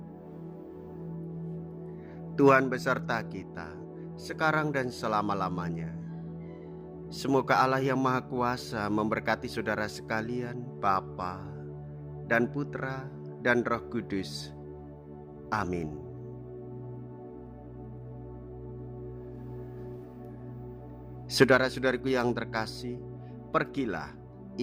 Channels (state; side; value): identical; both; correlation 1.00